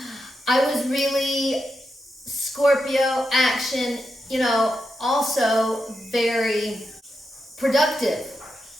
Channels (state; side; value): normal; both; correlation 0.86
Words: I was really Scorpio action, you know, also very productive